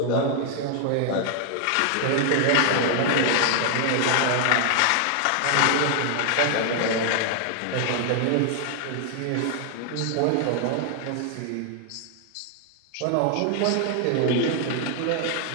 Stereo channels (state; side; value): different; both; correlation 0.00